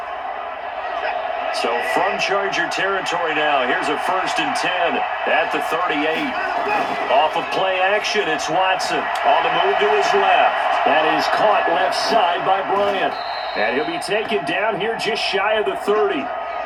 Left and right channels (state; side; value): identical; both; correlation 1.00